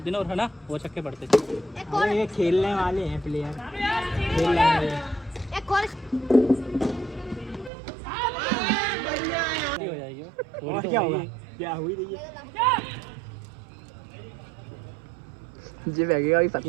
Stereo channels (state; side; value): drops out; left; at 7.7 s